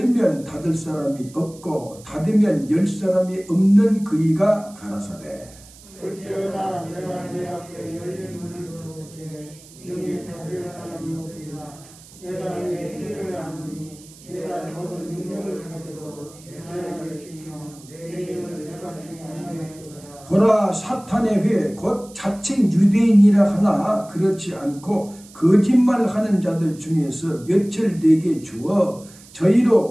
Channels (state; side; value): noise; right; hiss, 22 dB below the sound